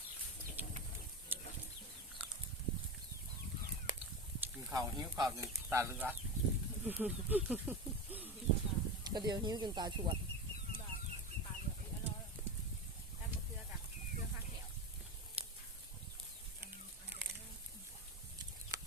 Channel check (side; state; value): both; normal; correlation 0.22